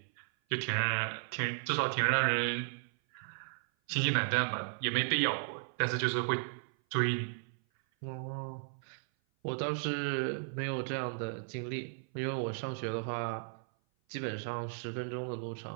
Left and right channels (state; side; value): silent; left; 54 dB below the other